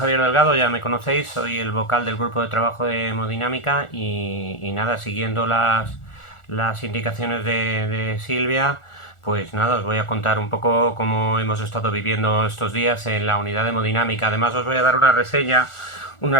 Delgado, ya me conocéis, soy el vocal del grupo de trabajo de hemodinámica y nada, siguiendo las indicaciones de Silvia, pues nada, os voy a contar un poco cómo hemos estado viviendo estos días en la unidad de hemodinámica. Además os voy a dar una reseña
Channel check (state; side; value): late; right; 1.4 ms